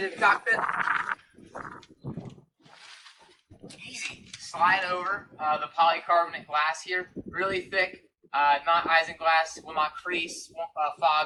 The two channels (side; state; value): both; identical; correlation 1.00